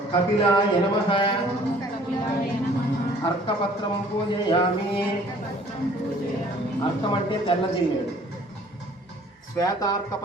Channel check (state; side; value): normal; both; correlation 0.55